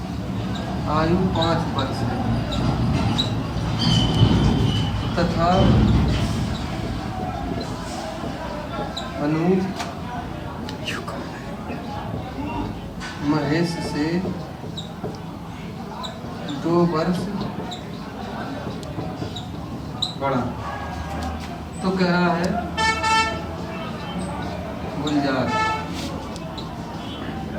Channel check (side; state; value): both; identical; correlation 1.00